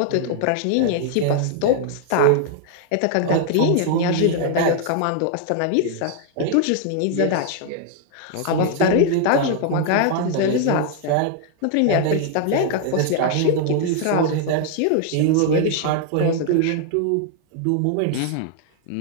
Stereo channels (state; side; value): different; both; correlation 0.00